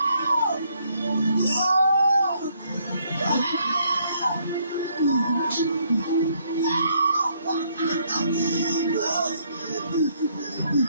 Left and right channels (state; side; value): inverted; both; correlation -0.70